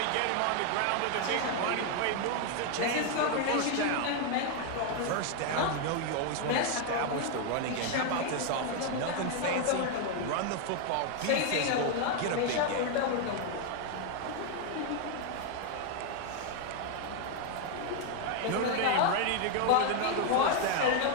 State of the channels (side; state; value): both; different; correlation 0.01